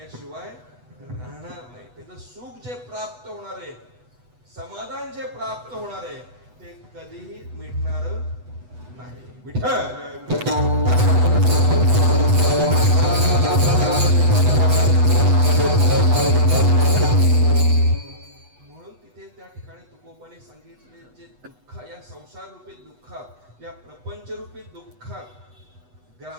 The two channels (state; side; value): late; left; 8.1 ms